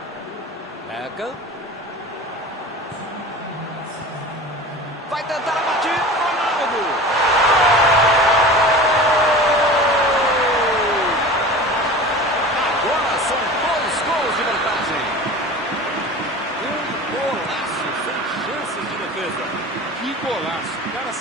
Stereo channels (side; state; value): both; normal; correlation 0.36